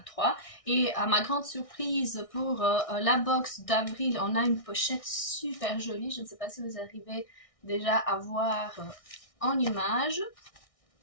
Et à ma grande surprise pour la box d'avril, on a une pochette super jolie. Je ne sais pas si vous arrivez déjà à voir en image.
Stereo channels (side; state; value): right; late; 1.6 ms